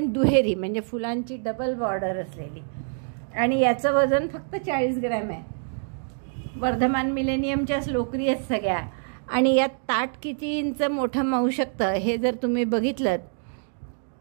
दुहेरी, म्हणजे फुलांची डबल बॉर्डर असलेली। आणि याचं वजन फक्त 40 ग्रॅम आहे। वर्धमान मिलेनियमच्याच लोकरी आहेत सगळ्या। आणि यात ताट किती इंच मोठं मावू शकतं हे जर तुम्ही बघितलं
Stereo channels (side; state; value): left; silent; 61 dB below the other